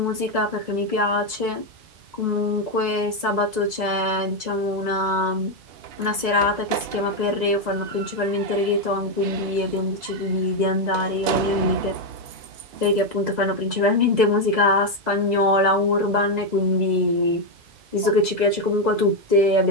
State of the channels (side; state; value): left; late; 2.0 ms